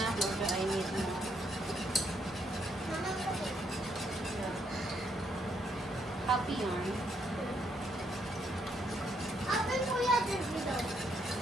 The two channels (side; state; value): both; normal; correlation 0.73